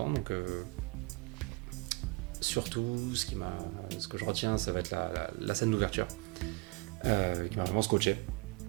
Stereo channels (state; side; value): quieter; left; 25.4 dB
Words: Donc, surtout, ce que je retiens, ça va être la scène d'ouverture, qui m'a vraiment scotché.